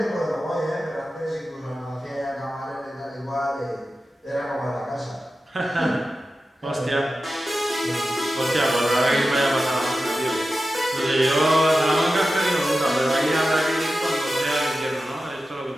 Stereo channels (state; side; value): normal; both; correlation 0.93